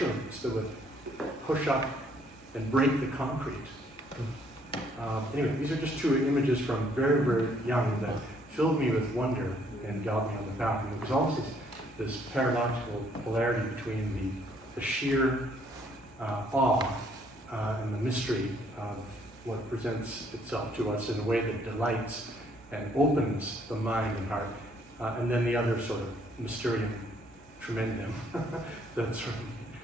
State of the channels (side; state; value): both; normal; correlation 0.66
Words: that would push up and break the concrete. Anyway, these are just two images from very, very young that filled me with wonder and got me on the path. And there was always this paradoxical polarity between the sheer awe and the mystery of what presents itself to us in a way that delights and opens the mind and heart, and then the other sort of mysterium tremendum that sort of